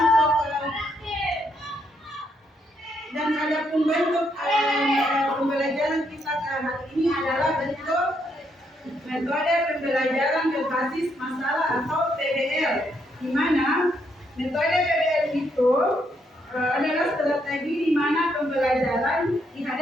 bentuk pembelajaran kita hari ini adalah bentuk metode pembelajaran berbasis masalah atau PBL, di mana metode PBL itu adalah strategi di mana pembelajaran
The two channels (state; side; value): normal; both; correlation 0.75